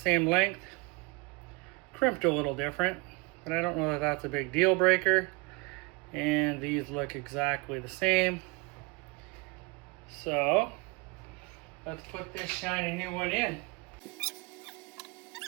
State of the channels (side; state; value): left; quieter; 27.6 dB